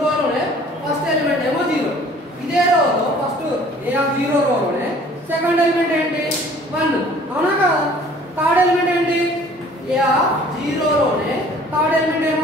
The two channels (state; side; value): normal; both; correlation 0.52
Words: ఫస్ట్ ఎలిమెంట్ ఏమో 0. ఇదే రోలో ఫస్ట్ A0 రోలోనే సెకండ్ ఎలిమెంట్ ఏంటి? 1. అవునా కదా? థర్డ్ ఎలిమెంట్ ఏంటి? A0 లోనే థర్డ్ ఎలిమెంట్